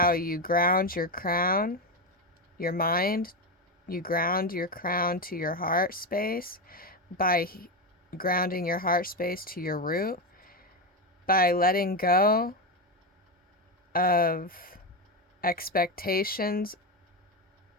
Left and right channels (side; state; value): both; normal; correlation 0.12